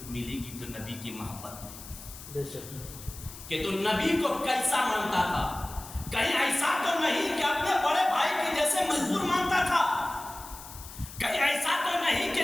گی تو نبی کی محبت میں، کہ تو نبی کو کیسا مانتا تھا؟ کہیں ایسا تو نہیں کہ اپنے بڑے بھائی کی جیسے مجبور مانتا تھا، کہیں ایسا تو نہیں کہ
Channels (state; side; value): noise; left; hiss, 15 dB below the sound